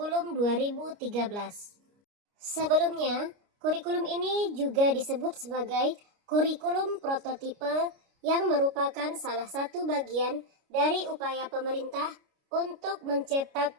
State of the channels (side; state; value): left; late; 29 ms